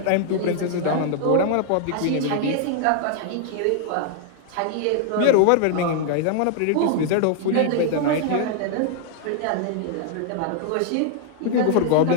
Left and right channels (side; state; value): both; different; correlation 0.00